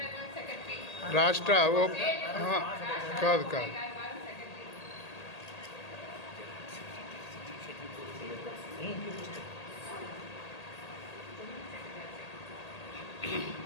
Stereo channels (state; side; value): late; right; 1.8 ms